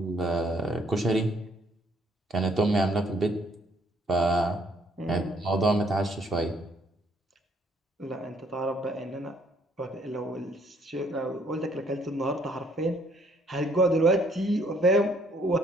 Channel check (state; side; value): normal; both; correlation 0.65